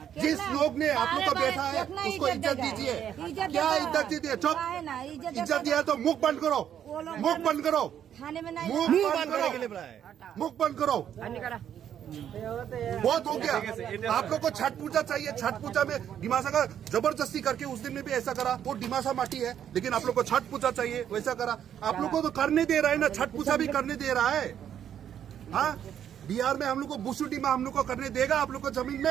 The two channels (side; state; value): left; quieter; 9.6 dB